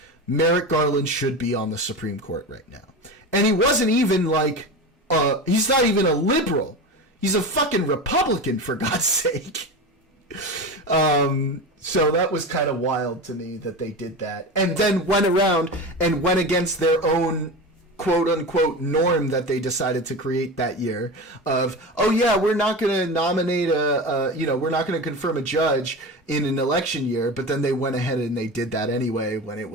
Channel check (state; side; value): normal; both; correlation 0.26